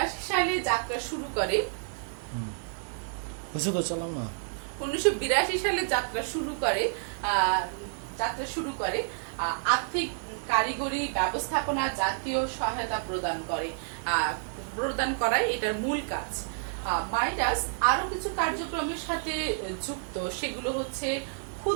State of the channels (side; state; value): left; silent; digital silence